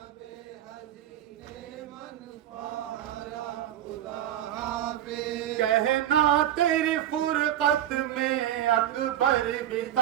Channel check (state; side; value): quieter; left; 11.7 dB